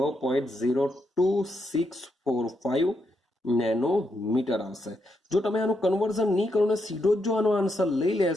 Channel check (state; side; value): normal; both; correlation 0.81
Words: નેનોમીટર આવશે. જો તમે આનું કન્વર્ઝન નહીં કરો ને સીધો જ જો આનો આન્સર લઈ